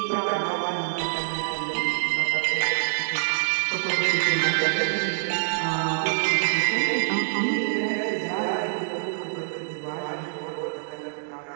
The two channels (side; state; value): left; silent; digital silence